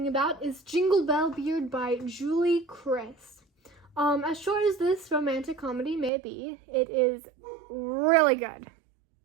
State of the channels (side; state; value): left; drops out; at 6.1 s